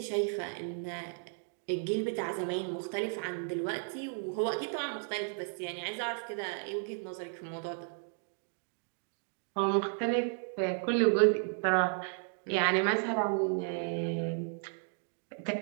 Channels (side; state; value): left; silent; 55 dB below the other